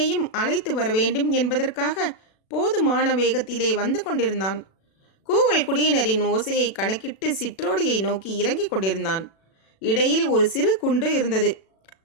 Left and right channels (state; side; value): late; right; 36 ms